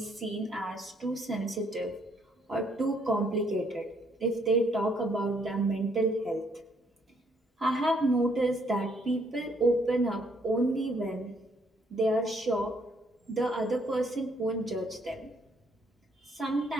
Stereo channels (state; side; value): normal; both; correlation 0.68